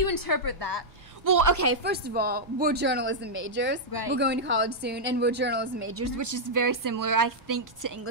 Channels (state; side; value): noise; right; rumble, 28 dB below the sound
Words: interpret that? Well, okay, first of all, we're journalism majors. Right. We're going to college soon, and we're journalism majors, which is very similar, I think, to